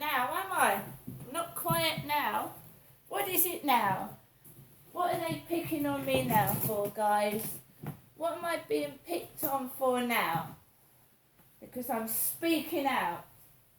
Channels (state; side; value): identical; both; correlation 1.00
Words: now, am I? I'm not quiet now. What is it now? What are they picking on me now for, guys? What am I being picked on for now? Because I'm speaking out.